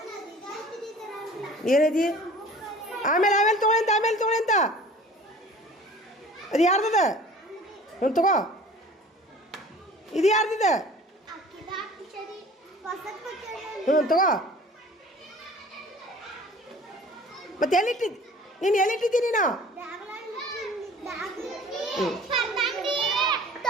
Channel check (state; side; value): normal; both; correlation 0.46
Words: ಏನೈತಿ ಆಮೇಲೆ ತೊಗೊಳಿ ಅಂತ ಅದು ಯಾರ್ದದ ಒಂದು ತಗೋ ಇದು ಯಾರ್ದಿದ ತಗೋ ಮತ್ತೆ ಎಲ್ಲಿಟ್ಟಿದ್ದಿ ನೀನು ಎಲ್ಲಿಟ್ಟಿದ್ದಿ ನೀನು